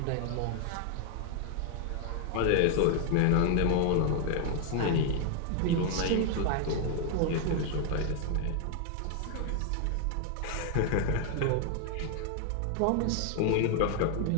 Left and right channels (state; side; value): different; both; correlation 0.00